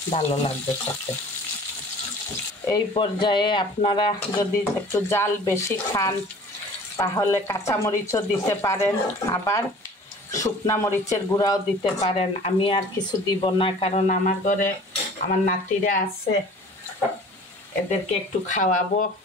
ভালো লাগবে খেতে। এই পর্যায়ে আপনারা যদি একটু জাল বেশি খান তাহলে কাঁচামরিচও দিতে পারেন, আবার শুকনা মরিচের গুঁড়াও দিতে পারেন। আমি আর কিছু দিব না, কারণ আমার ঘরে আমার নাতিরা আছে, এদেরকে একটু খাওয়াবো,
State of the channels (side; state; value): both; normal; correlation 0.46